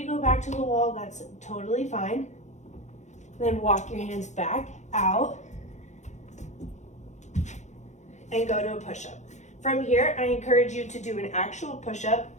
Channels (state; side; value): late; right; 0.34 ms